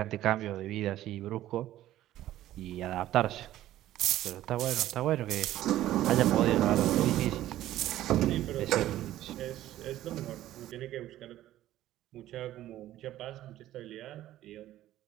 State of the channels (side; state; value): left; quieter; 13.9 dB